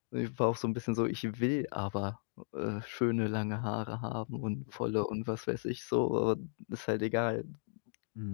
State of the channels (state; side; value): silent; right; digital silence